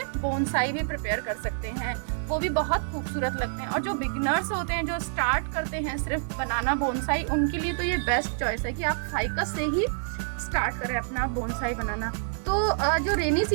बोनसाई भी प्रिपेयर कर सकते हैं, वो भी बहुत खूबसूरत लगते हैं। और जो बिगिनर्स होते हैं, जो स्टार्ट करते हैं सिर्फ बनाना बोनसाई, उनके लिए तो ये बेस्ट चॉइस है कि आप फाइकस से ही स्टार्ट करें अपना बोनसाई बनाना। तो जो रेनी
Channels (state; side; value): silent; left; digital silence